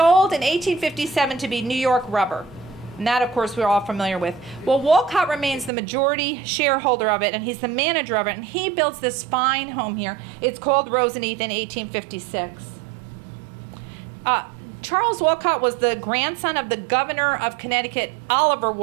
in 1857 to be New York Rubber. And that, of course, we're all familiar with. Well, Walcott remains the majority shareholder of it, and he's the manager of it, and he builds this fine home here. It's called Roseneath in 1856. Charles Walcott was the grandson of the governor of Connecticut, Oliver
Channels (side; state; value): left; drops out; at 5.7 s